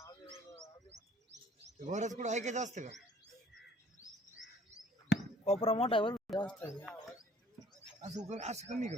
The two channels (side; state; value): both; normal; correlation 0.55